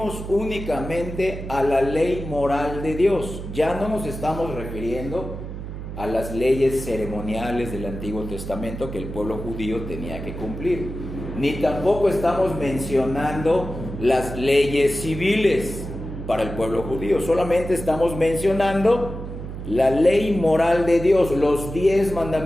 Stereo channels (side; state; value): right; noise; hum, 8 dB below the sound